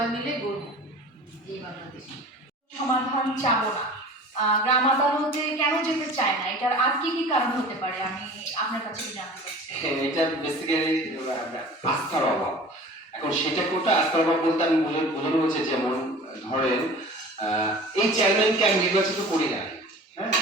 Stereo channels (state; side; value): normal; both; correlation 0.41